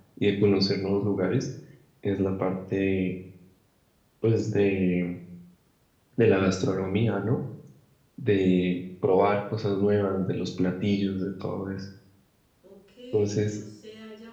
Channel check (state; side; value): identical; both; correlation 1.00